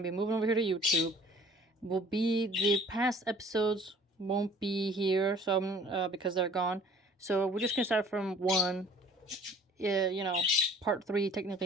to be moving over here to YouTube. The past episodes won't be here, because they're gone. So, we're just going to start from one. Part 3,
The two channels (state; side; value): normal; both; correlation 0.52